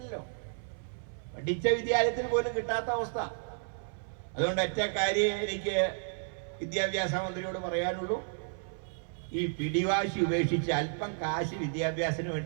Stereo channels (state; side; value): silent; left; 56 dB below the other